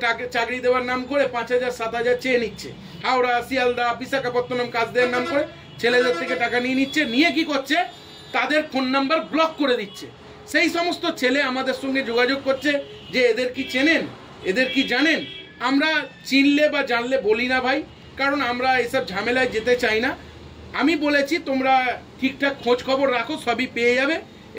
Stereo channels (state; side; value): identical; both; correlation 1.00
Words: চাকরি দেওয়ার নাম করে 5,000 7,000 চেয়ে নিচ্ছে। হাওড়া, শিয়ালদা, বিশাখাপত্তনম কাজ দেওয়ার নাম করে ছেলেদের থেকে টাকা নিয়ে নিচ্ছে। নিয়ে কি করছে, তাদের ফোন নাম্বার ব্লক করে দিচ্ছে। সেই সমস্ত ছেলে আমাদের সঙ্গে যোগাযোগ করছে যে এদের কি চেনেন, এদের কি জানেন। আমরা চিনলে বা জানলে বলি না ভাই, কারণ আমরা এসব ঝামেলায় যেতে চাই না। আমি বলেছি তোমরা ঠিকঠাক খোঁজ খবর রাখো, সবই পেয়ে যাবে